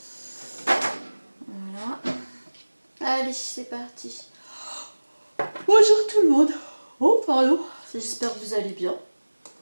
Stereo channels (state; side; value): inverted; both; correlation -1.00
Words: Voilà. Allez, c'est parti. Bonjour tout le monde. Oh, pardon. J'espère que vous allez bien.